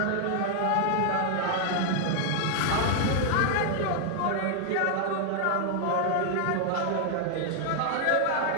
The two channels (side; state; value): both; different; correlation 0.00